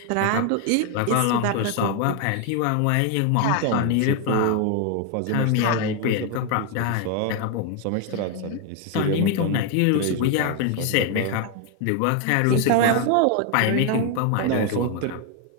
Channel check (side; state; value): both; different; correlation 0.01